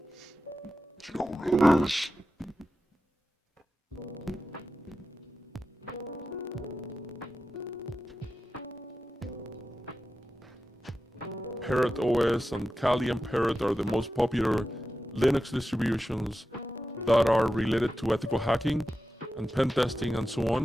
You know what it is. Parrot OS and Kali and Parrot are the most popular Linux distributions that are related to ethical hacking and pen testing and so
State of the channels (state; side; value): normal; both; correlation 0.92